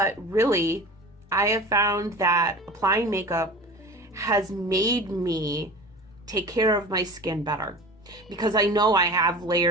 really, I have found that applying makeup has made me take care of my skin better, because I know I have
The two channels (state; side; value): normal; both; correlation 0.36